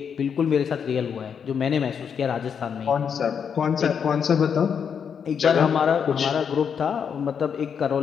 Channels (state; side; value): quieter; right; 7.2 dB